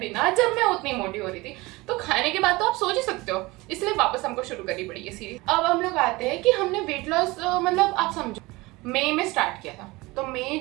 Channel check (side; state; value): left; quieter; 22.0 dB